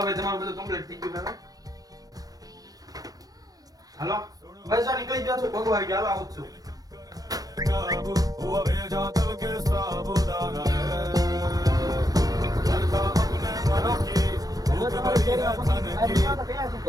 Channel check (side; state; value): left; late; 0.18 ms